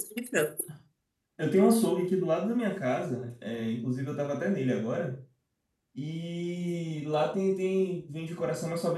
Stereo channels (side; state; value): both; identical; correlation 1.00